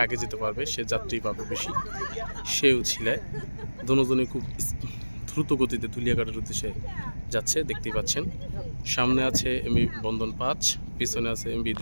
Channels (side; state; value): both; inverted; correlation -1.00